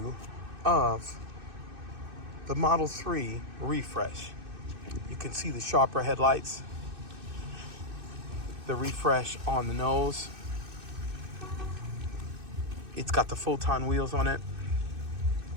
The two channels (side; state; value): left; late; 2.6 ms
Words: of the Model 3 refresh. You can see the sharper headlights, the refresh on the nose. It's got the full-ton wheels on it.